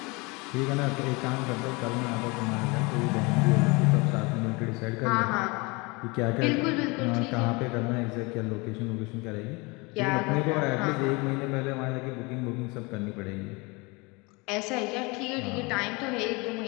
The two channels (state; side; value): quieter; right; 26.8 dB